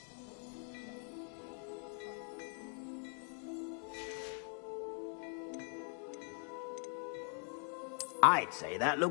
I'd say that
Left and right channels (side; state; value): right; silent; 50 dB below the other